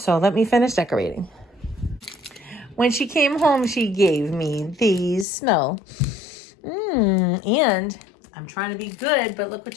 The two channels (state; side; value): drops out; right; at 5.2 s